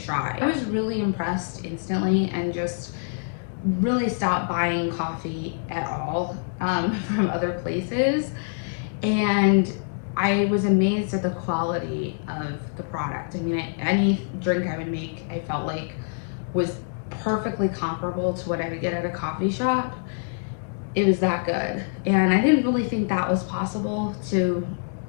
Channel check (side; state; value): right; silent; digital silence